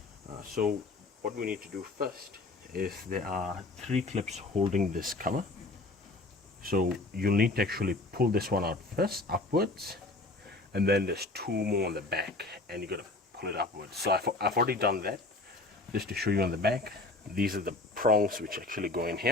So what we need to do first is there are 3 clips holding this cover. So you'll need to actually pull this one out first, upwards, and then there's 2 more on the back, and you gotta pull it upwards. So I've already done that, just to show you on the back. These are the prongs which actually go in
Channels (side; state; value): right; quieter; 3.1 dB